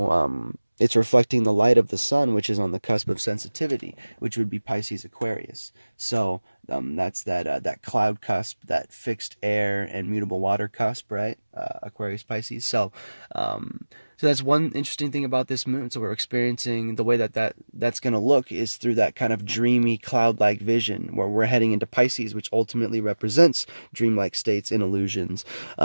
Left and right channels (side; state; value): both; inverted; correlation -1.00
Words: it's reflecting the light of the sun, which is on the cusp of sensitivity, which would be Pisces Aquarius. So that's that cloud cusp, that fixed air and mutable water cusp, right? Aquarius Pisces. So so that's one interesting thing about this moon. So we're experiencing the way that's going to look is through that kind of dreamy cloud-like vision, where we're heading into Pisces, which ultimately represents dreamlike states and illusions.